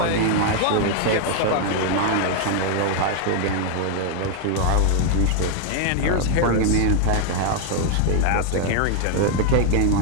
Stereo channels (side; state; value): both; different; correlation 0.00